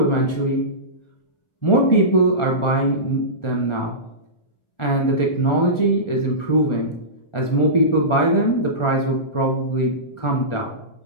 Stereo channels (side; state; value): right; late; 1.4 ms